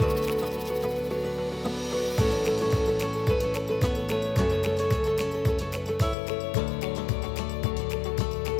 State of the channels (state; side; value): drops out; right; at 6.2 s